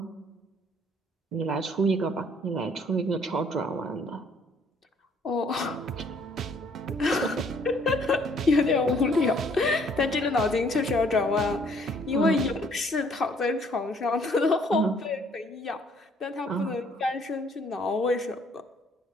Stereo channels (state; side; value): normal; both; correlation 0.62